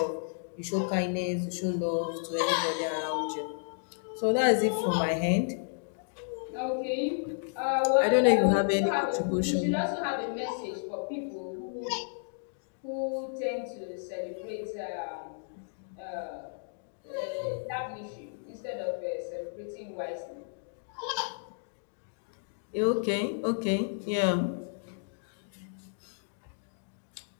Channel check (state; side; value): silent; right; digital silence